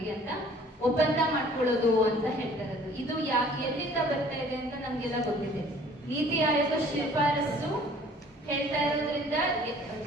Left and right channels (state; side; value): normal; both; correlation 0.53